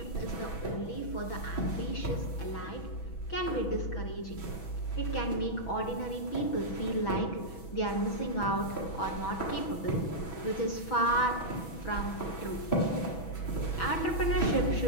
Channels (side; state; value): right; late; 6.1 ms